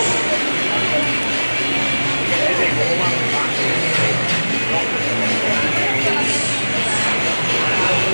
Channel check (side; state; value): both; inverted; correlation -1.00